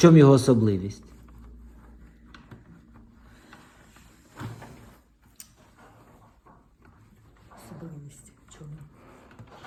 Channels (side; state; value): both; identical; correlation 1.00